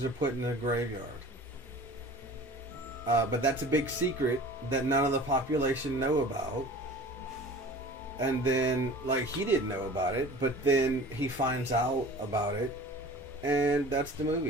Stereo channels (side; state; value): both; normal; correlation 0.42